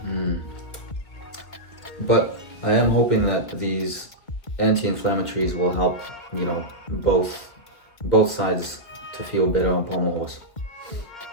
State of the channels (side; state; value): right; late; 2.3 ms